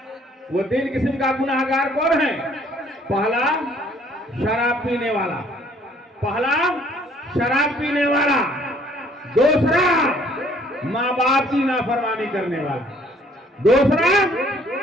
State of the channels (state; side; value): normal; both; correlation 0.60